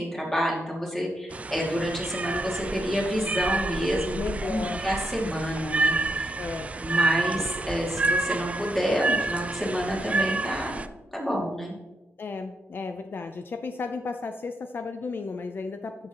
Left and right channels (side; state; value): both; normal; correlation 0.80